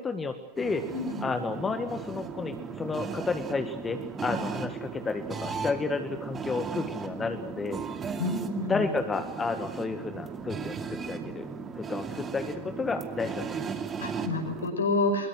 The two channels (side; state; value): both; normal; correlation 0.54